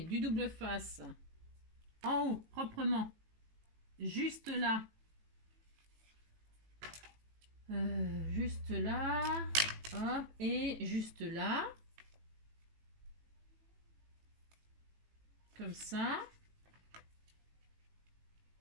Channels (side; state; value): left; late; 18 ms